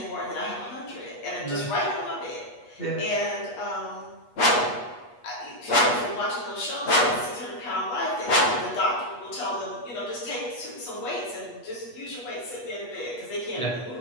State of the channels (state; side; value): late; right; 8.3 ms